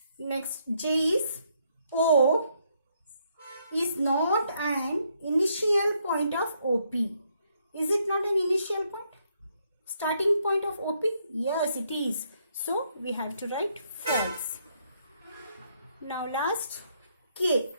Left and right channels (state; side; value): inverted; both; correlation -0.73